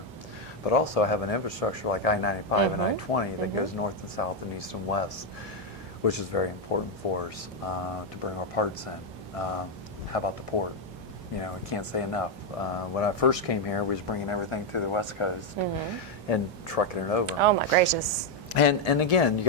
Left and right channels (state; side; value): normal; both; correlation 0.02